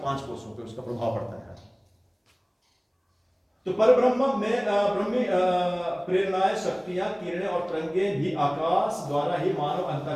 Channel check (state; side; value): identical; both; correlation 1.00